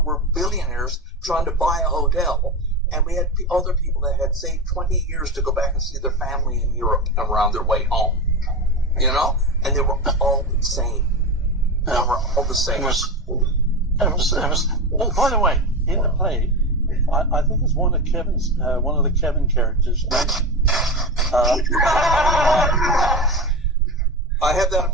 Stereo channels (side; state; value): both; normal; correlation 0.21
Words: billionaires trying to buy a hotel, and we had other people that had saved 20 years to go back and see their family in Europe and were on their way home. You know, and they were all the same. They were all the same. It was. Oh, by the way, in the play, I think it's one of the Kevin characters. Right? I have that